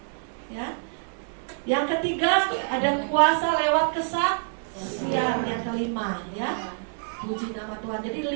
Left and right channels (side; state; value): left; silent; 60 dB below the other